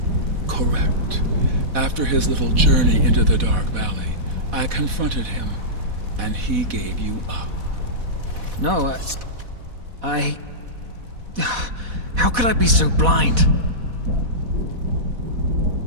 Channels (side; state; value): left; late; 4.1 ms